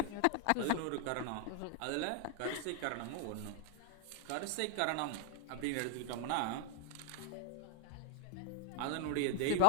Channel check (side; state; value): both; different; correlation 0.00